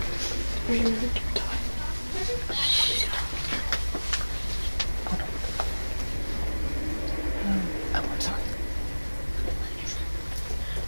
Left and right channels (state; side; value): inverted; both; correlation -1.00